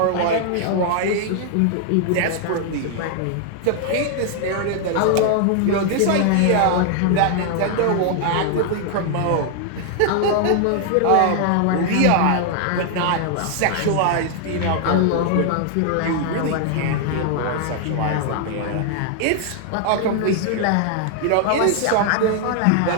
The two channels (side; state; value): both; different; correlation 0.00